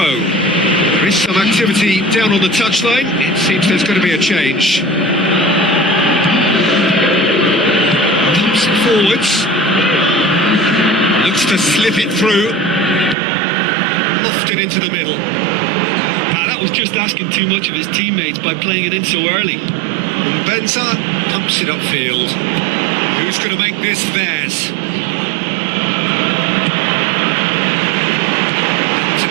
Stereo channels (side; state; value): left; drops out; at 13.2 s